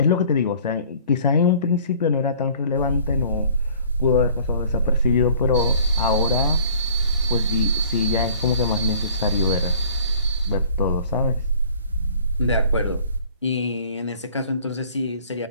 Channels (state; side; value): inverted; both; correlation -0.52